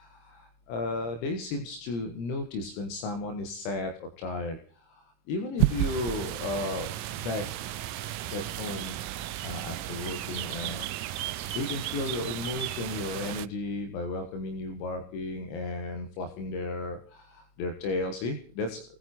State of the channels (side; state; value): right; late; 25 ms